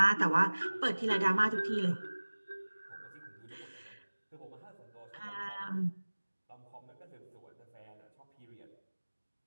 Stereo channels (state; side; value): inverted; both; correlation -1.00